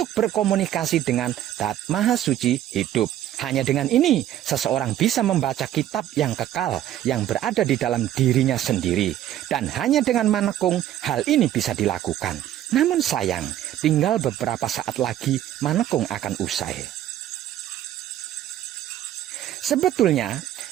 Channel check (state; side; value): quieter; left; 12.2 dB